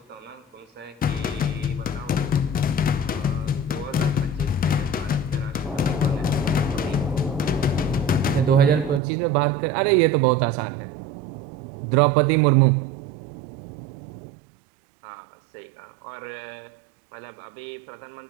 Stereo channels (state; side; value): drops out; left; at 9.0 s